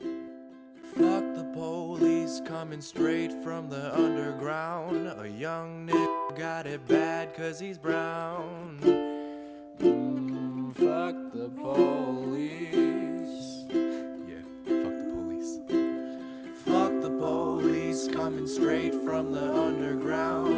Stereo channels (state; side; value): identical; both; correlation 1.00